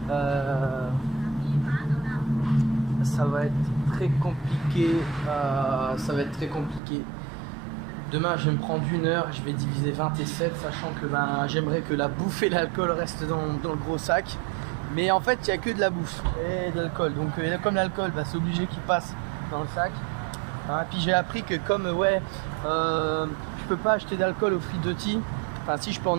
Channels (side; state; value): left; drops out; at 6.8 s